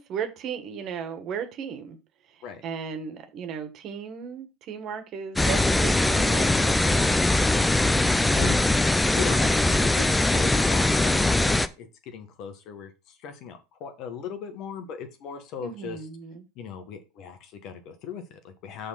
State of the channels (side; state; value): both; normal; correlation 0.91